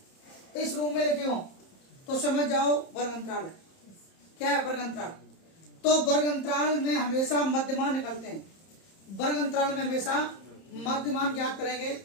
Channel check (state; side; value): late; right; 30 ms